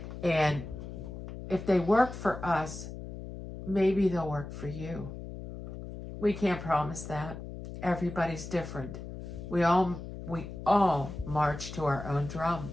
And if they work for us, maybe they'll work for you. We can't promise that. Everybody's different. We all march to our own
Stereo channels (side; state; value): left; noise; hum, 10 dB below the sound